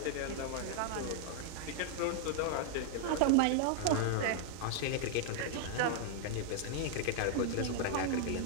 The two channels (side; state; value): both; different; correlation 0.00